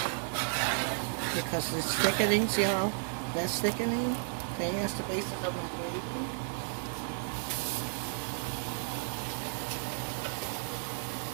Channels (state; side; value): silent; left; 56 dB below the other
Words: because it's thickening, see how that's thickening? See, that's the basis of my gravy.